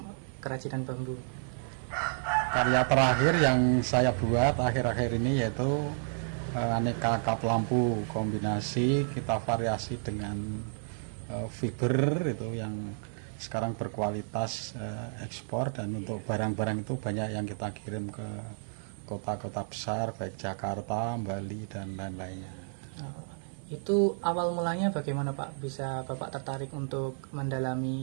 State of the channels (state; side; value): silent; left; digital silence